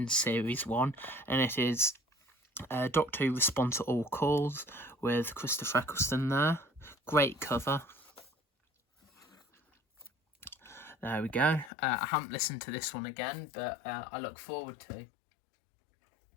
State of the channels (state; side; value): drops out; right; at 11.7 s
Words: Series 1, and it is Doctor Who Respond to All Calls with Christopher Eccleston there. Great cover. There we go. I haven't listened to this one again, but I look forward to.